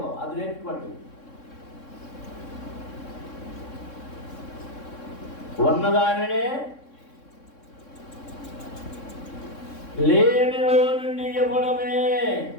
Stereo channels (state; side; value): late; right; 3.6 ms